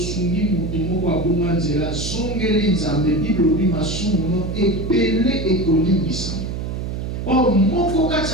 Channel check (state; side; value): noise; right; hum, 4 dB below the sound